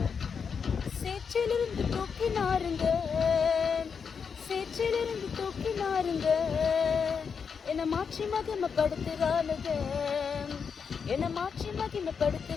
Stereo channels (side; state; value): right; quieter; 6.2 dB